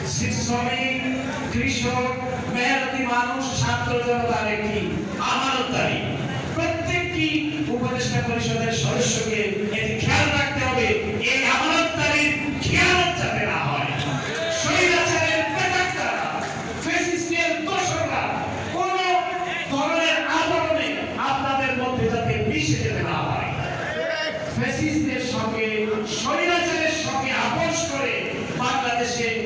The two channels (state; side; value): identical; both; correlation 1.00